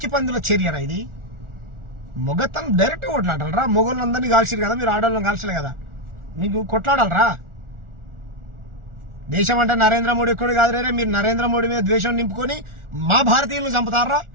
పందుల చర్యరా ఇది. మొగతను డైరెక్ట్ కొట్లాడాలరా. మొగోళ్ళందరినీ కాల్చారు కదా, మీరు ఆడవాళ్ళని కాల్చలే కదా, మీకు కొట్లాడాలరా. దేశం అంటే నరేంద్ర మోడీ కూడా కాదు రే, మీరు నరేంద్ర మోడీ మీద ద్వేషం నింపుకొని మా భారతీయులను చంపుతారా,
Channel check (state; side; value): late; left; 1.4 ms